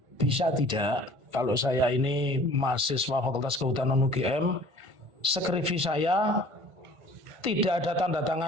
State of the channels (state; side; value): late; left; 1.5 ms